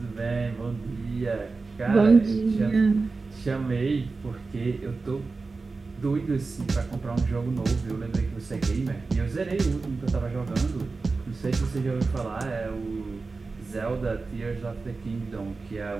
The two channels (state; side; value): quieter; left; 4.0 dB